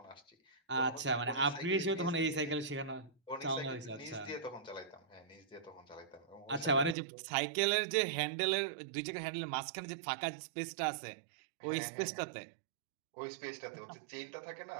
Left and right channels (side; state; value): left; drops out; at 7.0 s